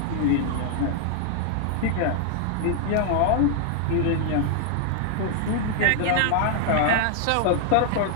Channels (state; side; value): different; both; correlation 0.00